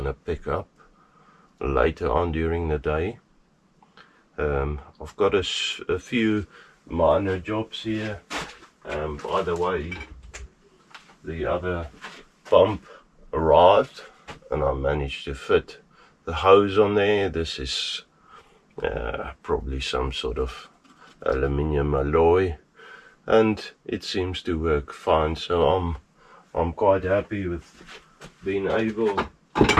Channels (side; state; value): both; identical; correlation 1.00